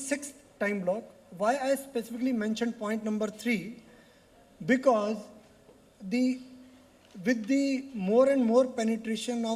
time block. Why I specifically mentioned point number 3? Because with the more and more penetration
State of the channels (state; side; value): identical; both; correlation 1.00